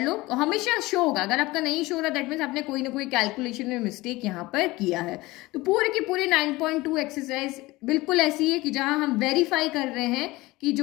लो। हमेशा शो होगा, अगर आपका नहीं शो हो रहा दैट मीन्स आपने कोई ना कोई कैलकुलेशन में मिस्टेक यहाँ पर किया है। तो पूरे की पूरी 9.2 एक्सरसाइज बिल्कुल ऐसी है कि जहां हम वेरीफाई कर रहे हैं कि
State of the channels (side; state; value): right; quieter; 20.4 dB